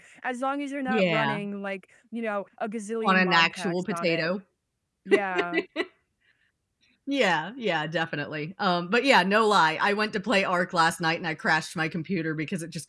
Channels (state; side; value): identical; both; correlation 1.00